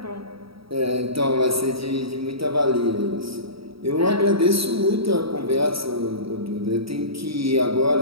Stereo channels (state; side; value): late; left; 0.76 ms